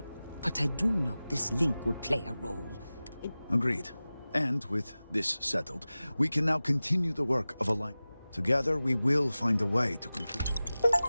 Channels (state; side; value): inverted; both; correlation -0.97